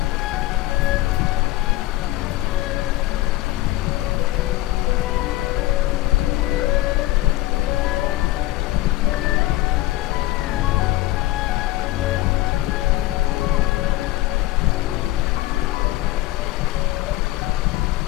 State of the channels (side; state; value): right; quieter; 16.8 dB